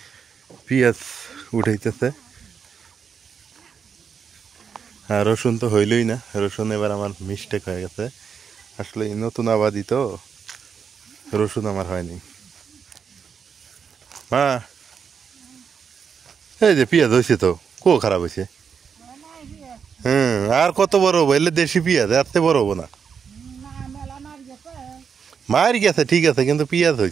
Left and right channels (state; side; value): quieter; left; 6.7 dB